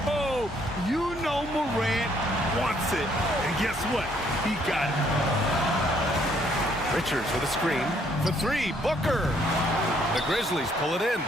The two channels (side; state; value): both; normal; correlation 0.67